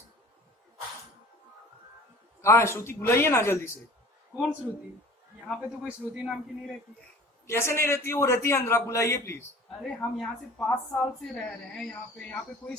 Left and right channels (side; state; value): both; normal; correlation 0.45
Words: कहाँ है श्रुति? बुलाइए ना जल्दी से। कौन श्रुति? यहाँ पे तो कोई श्रुति नाम की नहीं रहती। कैसे नहीं रहती है? वो रहती है अंदर, आप बुलाइए प्लीज। अरे हम यहाँ से 5 साल से रह रहे हैं, यहाँ पे कोई